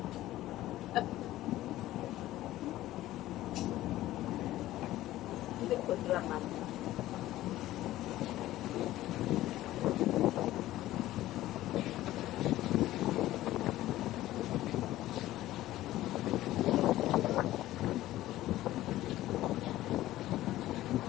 Hindi ko drama.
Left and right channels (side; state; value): right; quieter; 15.2 dB